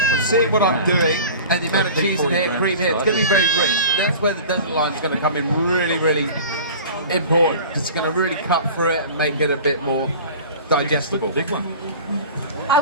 is seeing what I'm the doing, and the amount of cheese in here, cream here, it's going to be very rich. That's where the desert lime is going to come in really, really important, because it's going to really cut through it and make it a bit more digestible. big one. I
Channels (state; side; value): inverted; both; correlation -0.39